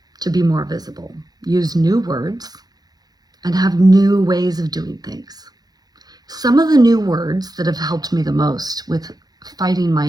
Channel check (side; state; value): left; late; 0.19 ms